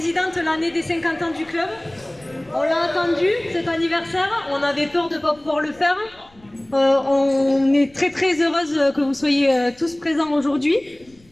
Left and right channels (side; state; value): left; noise; rumble, 29 dB below the sound